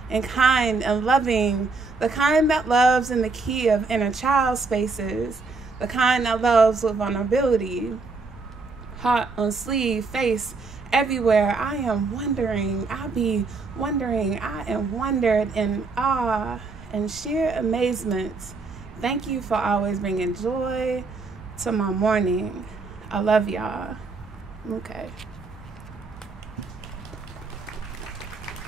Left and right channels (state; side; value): quieter; left; 4.0 dB